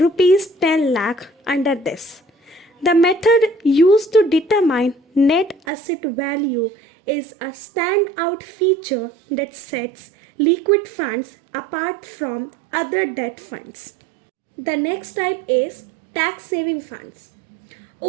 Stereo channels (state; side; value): drops out; left; at 5.6 s